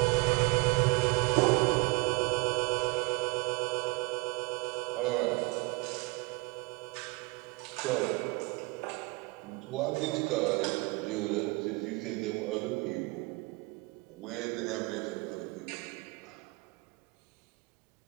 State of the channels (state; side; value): quieter; left; 25.4 dB